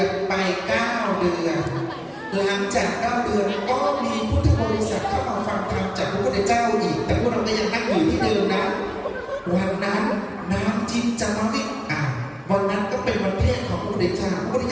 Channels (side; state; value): both; identical; correlation 1.00